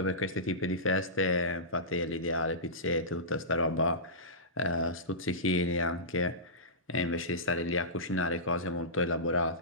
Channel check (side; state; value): both; normal; correlation -0.19